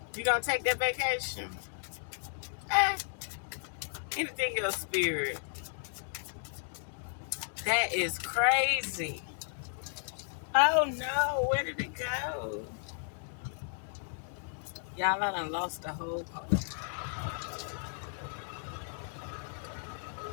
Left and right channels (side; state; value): right; silent; digital silence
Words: You gonna take that vacation? Anything else, spirit? That is crazy. Oh no, where did it go? Y'all, I done lost the whole card.